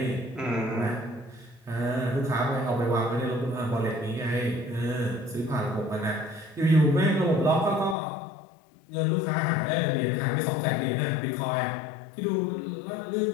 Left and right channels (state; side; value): drops out; right; at 8.0 s